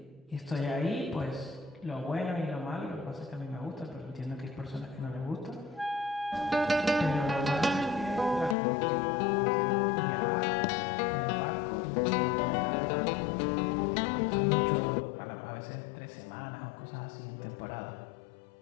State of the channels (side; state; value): right; drops out; at 8.6 s